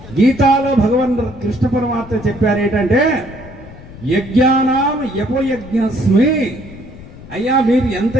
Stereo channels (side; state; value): left; noise; rumble, 17 dB below the sound